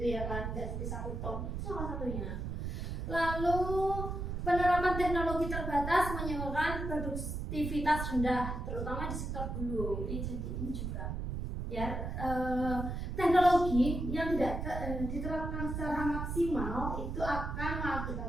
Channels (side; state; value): right; noise; rumble, 4 dB below the sound